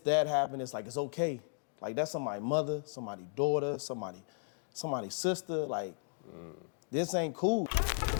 happened, it's like it's okay. Like that's somebody's mother, somebody's daughter, somebody's sister. Like this ain't cool.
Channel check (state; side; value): silent; right; digital silence